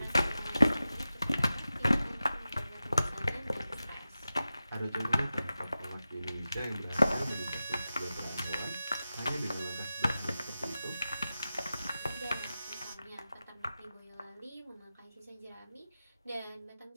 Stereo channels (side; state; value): both; inverted; correlation -0.93